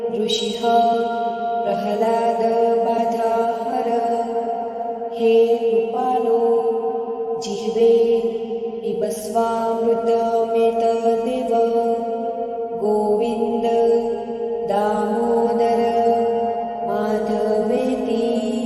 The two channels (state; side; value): identical; both; correlation 1.00